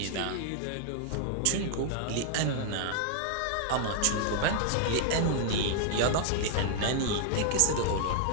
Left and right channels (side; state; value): both; different; correlation -0.01